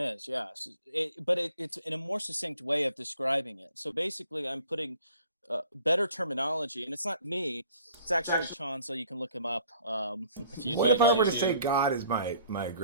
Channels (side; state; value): both; inverted; correlation -0.55